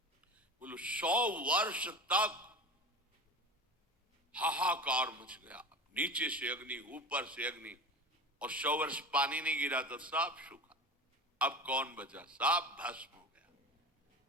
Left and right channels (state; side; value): normal; both; correlation 0.32